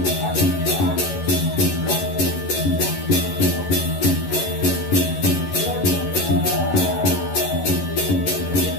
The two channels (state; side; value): late; right; 11 ms